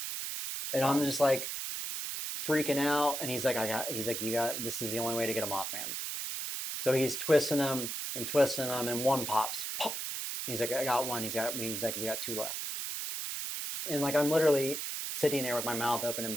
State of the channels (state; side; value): noise; right; hiss, 4 dB below the sound